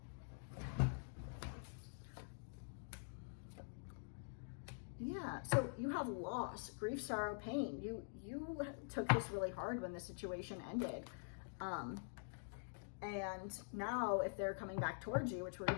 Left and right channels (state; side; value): silent; right; digital silence